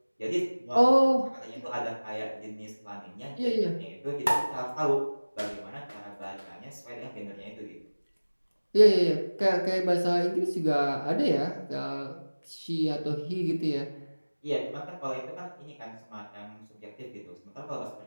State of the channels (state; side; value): inverted; both; correlation -1.00